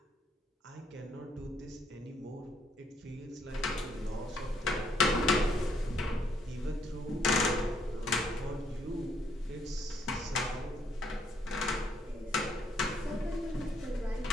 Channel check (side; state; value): both; normal; correlation 0.71